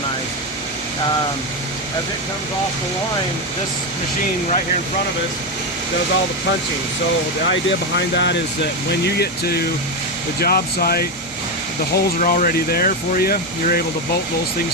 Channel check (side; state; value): both; normal; correlation 0.10